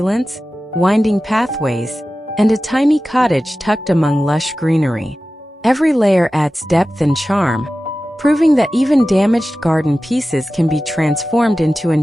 winding pathways, and a tiny cottage tucked among lush greenery. Every layer adds depth and charm, proving that even damaged garden pieces can be transformed into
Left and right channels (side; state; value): both; normal; correlation 0.95